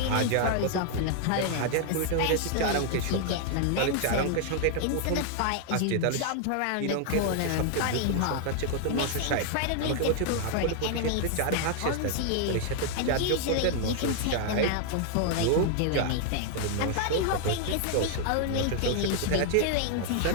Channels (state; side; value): different; both; correlation 0.00